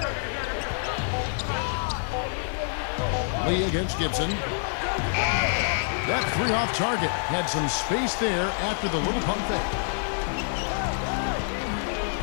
Lee against Gibson. That 3 off target. Had some space there after the little pump fake.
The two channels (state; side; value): silent; right; digital silence